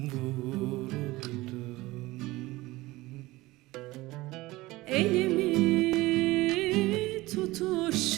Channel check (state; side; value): quieter; left; 19.6 dB